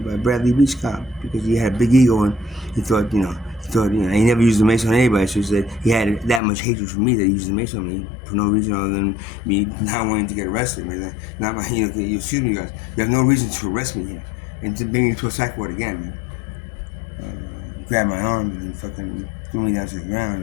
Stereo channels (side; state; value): right; drops out; at 6.4 s